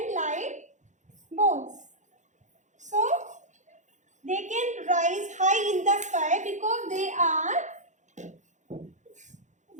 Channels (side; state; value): left; late; 0.35 ms